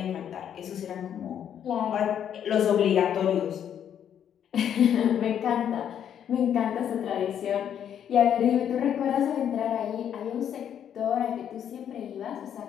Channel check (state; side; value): quieter; right; 9.2 dB